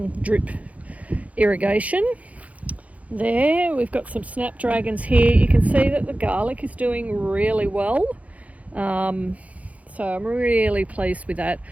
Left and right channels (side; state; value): left; late; 0.068 ms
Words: drip irrigation there. We've got some snapdragons here. You can see that the garlic is doing really well. So I'm really pleased with that.